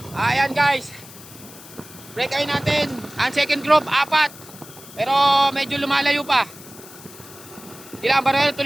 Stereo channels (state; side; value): noise; left; hiss, 18 dB below the sound